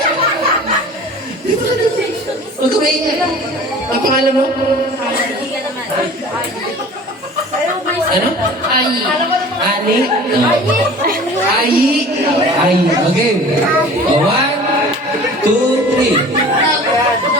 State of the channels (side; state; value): both; normal; correlation 0.43